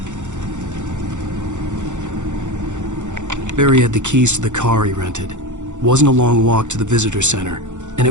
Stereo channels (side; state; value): left; late; 0.85 ms